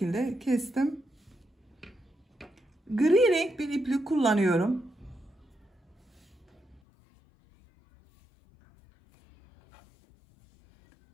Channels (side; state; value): right; drops out; at 6.8 s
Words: kestim. Gri renk bir iplik kullanıyorum.